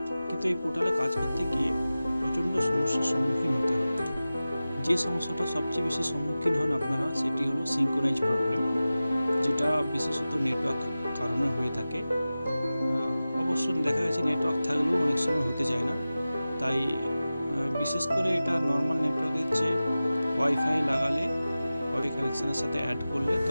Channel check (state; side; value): inverted; both; correlation -0.96